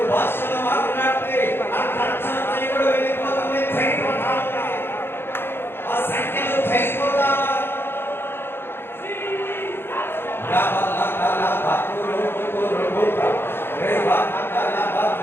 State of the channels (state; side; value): late; right; 0.11 ms